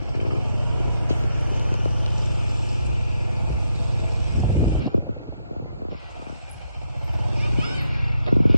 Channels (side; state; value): both; inverted; correlation -0.80